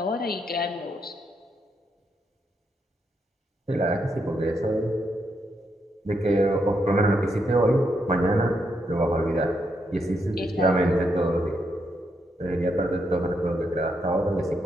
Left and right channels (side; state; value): both; normal; correlation 0.80